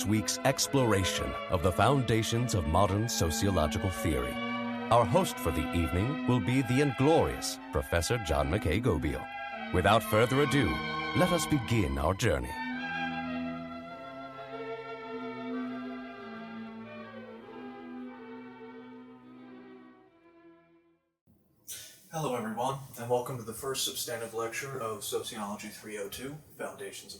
week's exploration of the foundations of modern sociological theory. Our host for the evening will be the inglorious Professor John MacKay Gobeil. Without further ado, let us begin our journey. Hello everyone, and welcome to the first substantive lecture of Sociology 302, Foundations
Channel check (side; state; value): both; identical; correlation 1.00